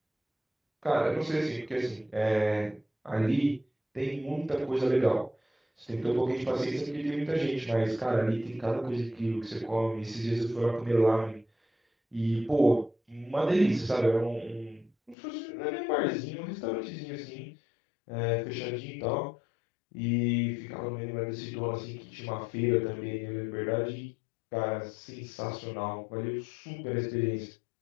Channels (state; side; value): drops out; right; at 15.2 s